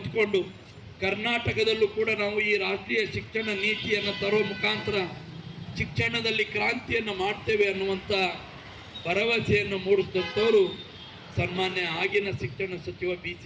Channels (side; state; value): both; identical; correlation 1.00